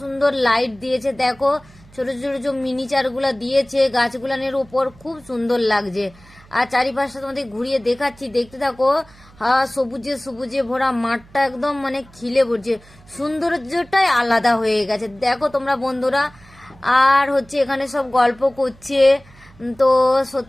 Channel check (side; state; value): right; noise; hum, 25 dB below the sound